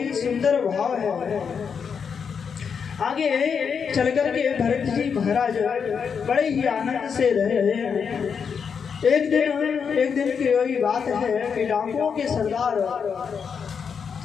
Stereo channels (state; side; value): quieter; right; 6.5 dB